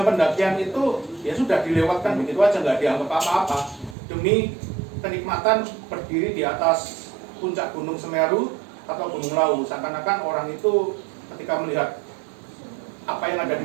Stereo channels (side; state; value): left; drops out; at 4.0 s